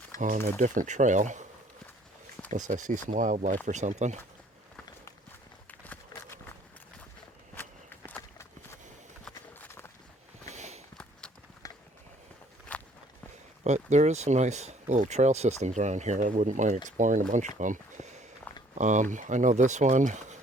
on a different trail unless I see some wildlife or something. But there is some nice little trail systems around here. I wouldn't mind exploring a bunch of them. I know this one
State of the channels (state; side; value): normal; both; correlation 0.59